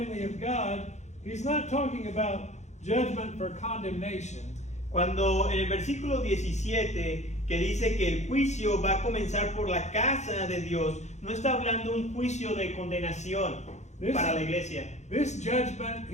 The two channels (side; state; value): right; late; 0.33 ms